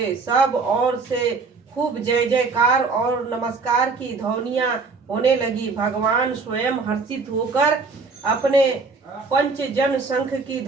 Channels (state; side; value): quieter; left; 4.4 dB